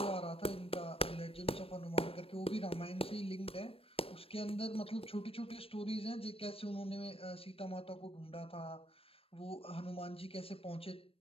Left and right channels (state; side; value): late; right; 0.28 ms